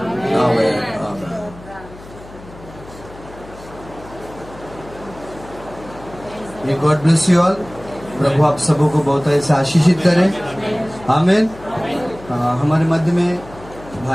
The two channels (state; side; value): noise; left; hum, 19 dB below the sound